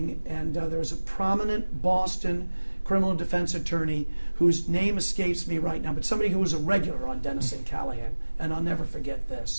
and there's a prominent Boston criminal defense attorney whose name escapes me right now, but somebody who was a regular on Dennis and Callahan, and I'll never forget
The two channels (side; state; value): both; inverted; correlation -1.00